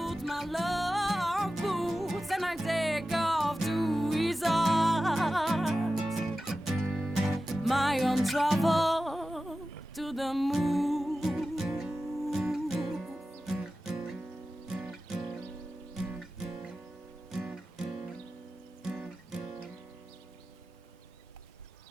my love boots and I take off to his heart. My own travel to the moon.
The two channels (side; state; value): both; normal; correlation 0.94